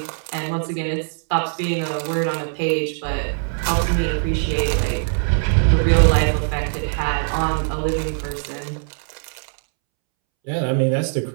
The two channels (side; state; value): left; silent; 65 dB below the other